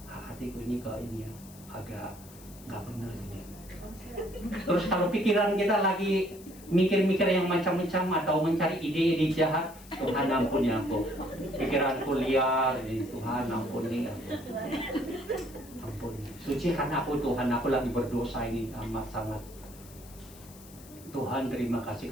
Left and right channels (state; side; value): noise; left; hiss, 20 dB below the sound